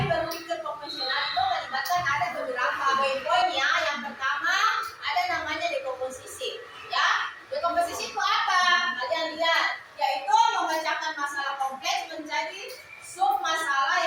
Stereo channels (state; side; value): identical; both; correlation 1.00